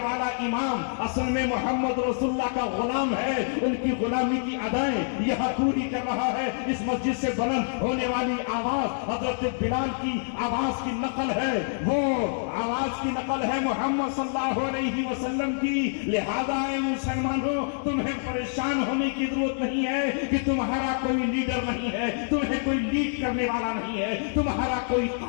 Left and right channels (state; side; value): silent; right; digital silence